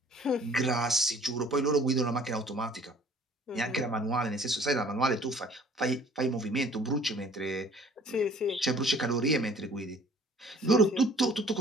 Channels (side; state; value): both; normal; correlation 0.53